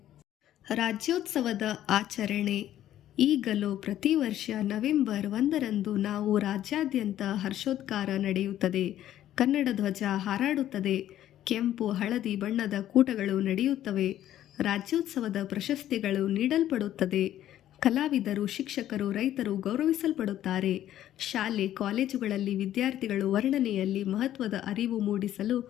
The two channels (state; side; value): quieter; right; 12.2 dB